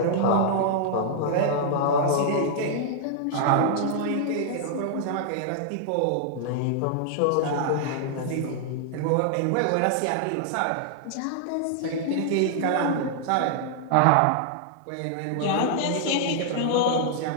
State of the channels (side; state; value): both; different; correlation -0.01